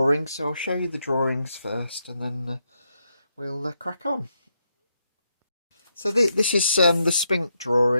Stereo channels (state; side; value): inverted; both; correlation -0.81